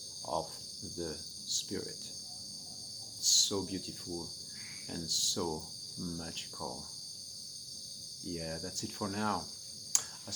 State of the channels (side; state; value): both; identical; correlation 1.00